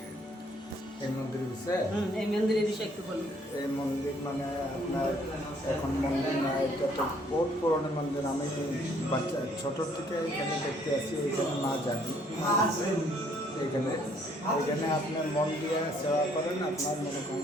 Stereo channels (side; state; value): both; normal; correlation 0.64